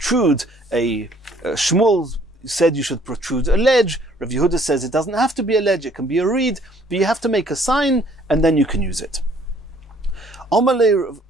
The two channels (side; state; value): both; normal; correlation 0.60